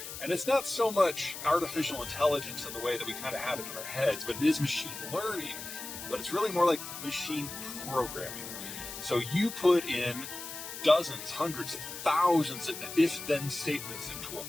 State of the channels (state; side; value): noise; left; hiss, 9 dB below the sound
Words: And it's not so much artificial intelligence in the way that we kind of have it in our heads, but it is machine learning. But it's really more like machine programming. So you put in dozens, hundreds, thousands of if-then statements into a